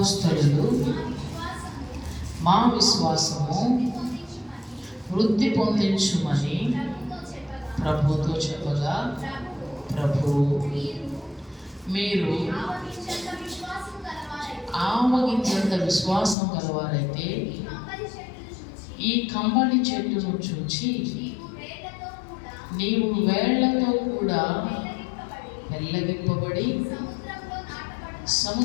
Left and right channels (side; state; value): right; drops out; at 16.4 s